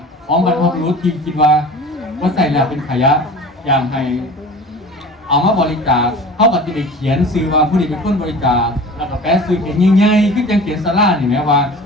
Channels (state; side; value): normal; both; correlation 0.39